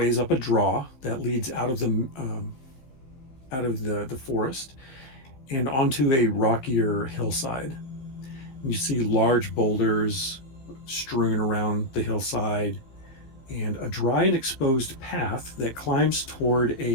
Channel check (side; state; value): right; late; 15 ms